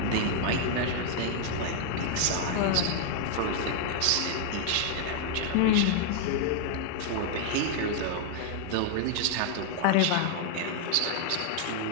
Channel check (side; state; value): both; different; correlation 0.00